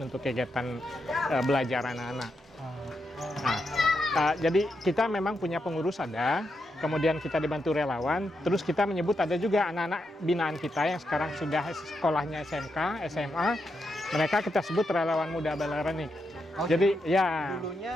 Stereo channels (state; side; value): normal; both; correlation 0.84